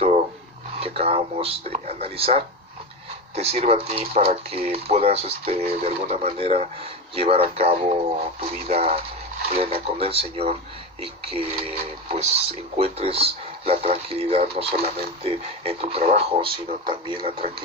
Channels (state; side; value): normal; both; correlation 0.20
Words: que acabamos de analizar te sirva a ti para que puedas de alguna manera llevar a cabo tu vida plena con el Señor, y que pues encuentres la tranquilidad no solamente en tu trabajo, sino también la